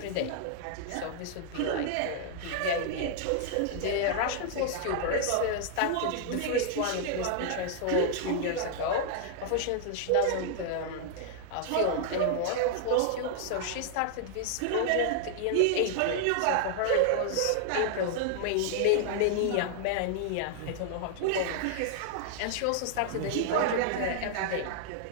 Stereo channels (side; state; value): both; different; correlation -0.01